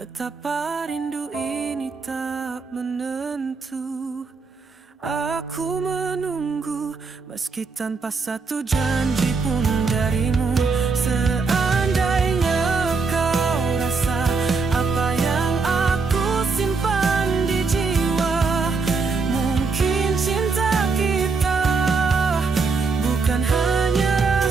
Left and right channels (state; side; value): quieter; left; 4.6 dB